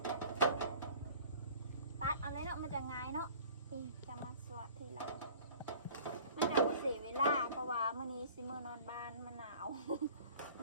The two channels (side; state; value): both; inverted; correlation -0.47